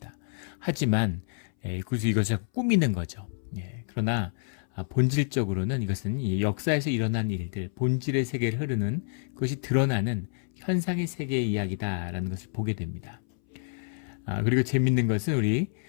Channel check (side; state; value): right; silent; 59 dB below the other